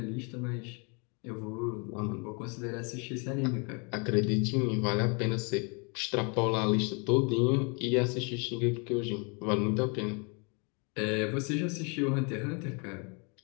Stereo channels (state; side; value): quieter; right; 34.3 dB